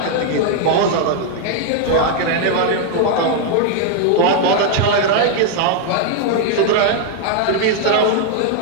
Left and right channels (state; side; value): different; both; correlation 0.00